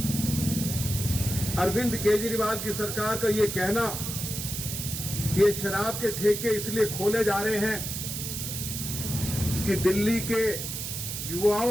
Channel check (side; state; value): right; noise; hiss, 5 dB below the sound